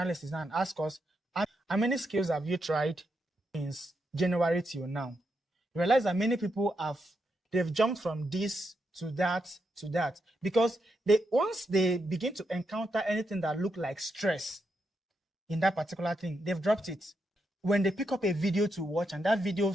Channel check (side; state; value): both; normal; correlation 0.82